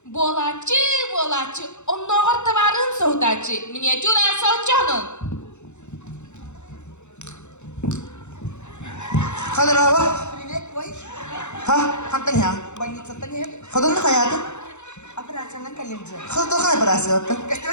Bolacı, onnoğur tavarın soğudacı. Миниатюра соучанын. Kadir abi. Привет, бой. Ha, hantan ya. Больница-то не. Kadın ne hayatı? Операция на коленце. Kadın da kay parası yaptı. Что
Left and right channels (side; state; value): right; late; 0.83 ms